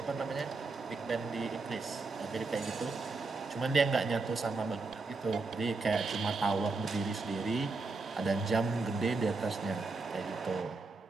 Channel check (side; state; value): left; quieter; 3.8 dB